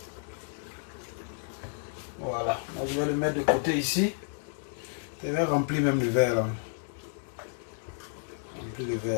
Voilà, là, je vais le mettre de côté ici. Je vais remplir même le verre là. Remplir le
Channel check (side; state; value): right; silent; 57 dB below the other